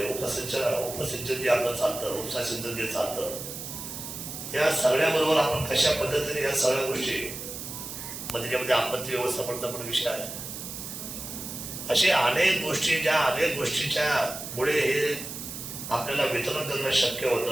उपसिंचन जे आपलं चालतं, उपसा सिंचन जे चालतं, या सगळ्याबरोबर आपण कशा पद्धतीने या सगळ्या गोष्टी मग त्याच्यामध्ये आपत्ती व्यवस्थापनाचा पण विषय आहे. असे अनेक गोष्टी ज्या अनेक गोष्टीच्या मुळे हे आपल्याला वितरण करणं शक्य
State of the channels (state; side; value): noise; right; hiss, 8 dB below the sound